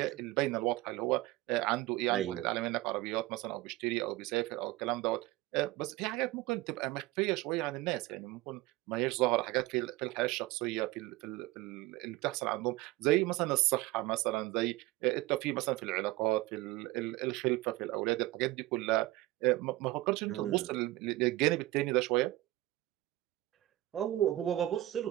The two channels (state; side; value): quieter; left; 17.7 dB